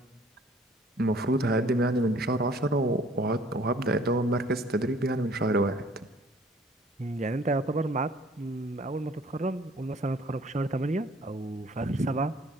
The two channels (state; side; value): normal; both; correlation 0.55